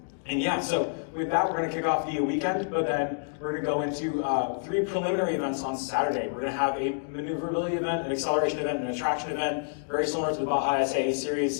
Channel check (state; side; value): silent; right; digital silence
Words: And yeah, so with that, we're going to kick off the weekend, but then we're going to go into 3 preliminary events on Saturday. We're going to have a maneuverability event, an acceleration event, and a traction event, very similar to the Baja SAE